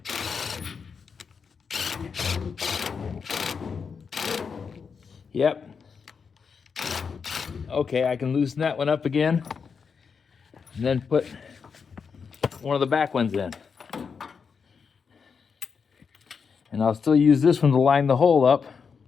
Yep. Okay, I can loosen that one up again and then put one of the back ones in. And I'll still use this one to line the hole up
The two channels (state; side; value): quieter; right; 5.9 dB